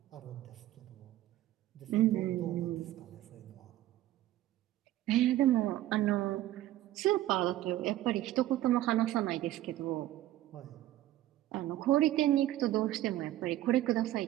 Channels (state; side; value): quieter; left; 14.4 dB